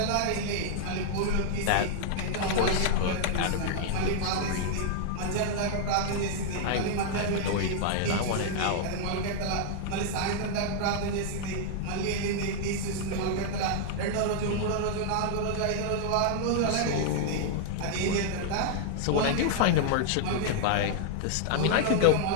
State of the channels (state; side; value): different; both; correlation -0.01